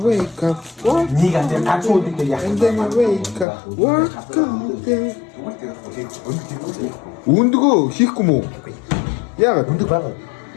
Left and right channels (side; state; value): right; drops out; at 3.5 s